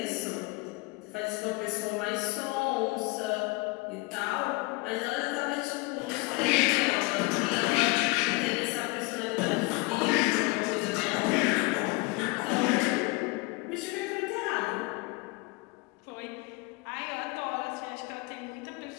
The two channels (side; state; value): right; quieter; 24.9 dB